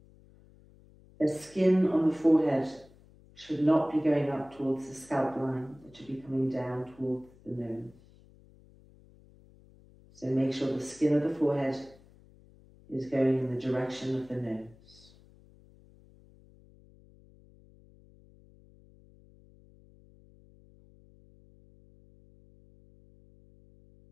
The skin on the forehead should not be going up towards the scalp line, it should be coming down towards the nose. So make sure the skin of the forehead is going in the direction of the nose.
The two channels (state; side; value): noise; left; hum, 26 dB below the sound